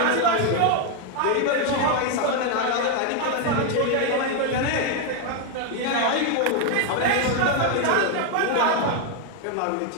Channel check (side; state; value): both; different; correlation 0.01